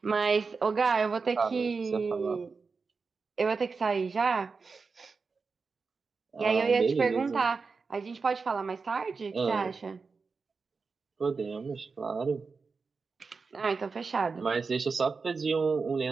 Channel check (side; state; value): left; quieter; 4.7 dB